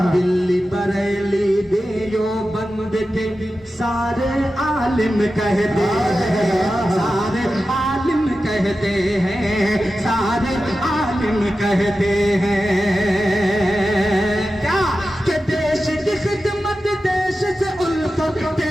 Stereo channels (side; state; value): both; normal; correlation 0.93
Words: दिल्ली बरेली देवबंद के सारे आलिम कहते हैं, सारे आलिम कहते हैं, सारे आलिम कहते हैं क्या कि देश की खिदमत, देश से उल्फत,